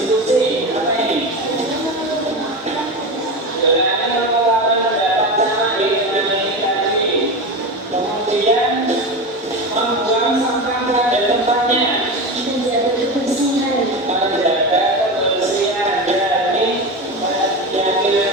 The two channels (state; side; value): normal; both; correlation 0.22